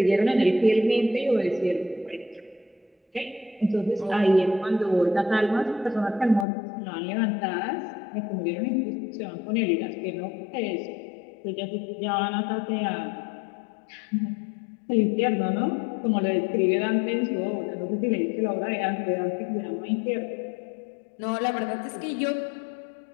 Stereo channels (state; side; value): drops out; right; at 6.5 s